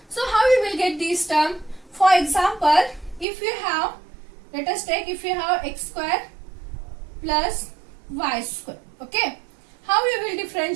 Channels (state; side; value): drops out; left; at 3.2 s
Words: So how you will get this term? For example, if you have, let us take, if you have x square plus y square. Okay. How you will